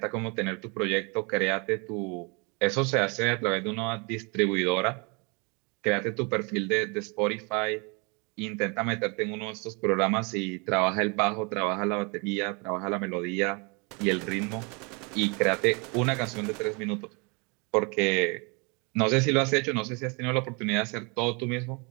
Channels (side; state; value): left; quieter; 31.3 dB